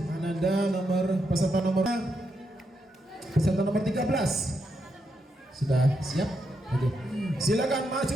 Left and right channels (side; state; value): both; normal; correlation 0.82